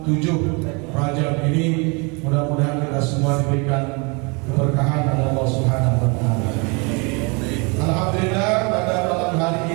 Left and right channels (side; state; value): left; quieter; 30.9 dB